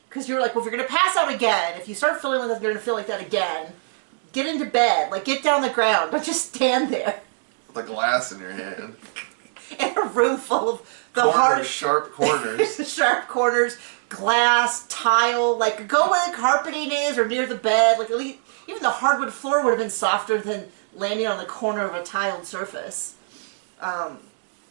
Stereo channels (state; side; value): silent; left; digital silence